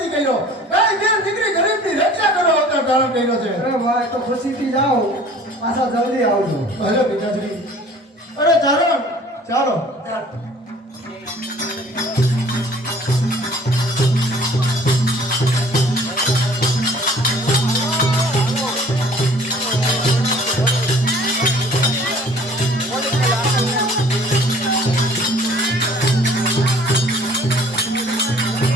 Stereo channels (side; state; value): both; normal; correlation 0.51